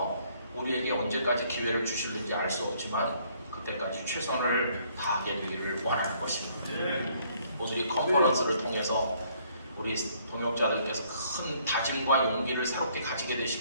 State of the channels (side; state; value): both; inverted; correlation -0.64